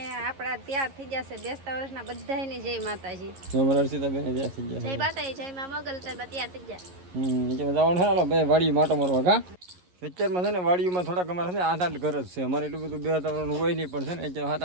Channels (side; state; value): left; late; 11 ms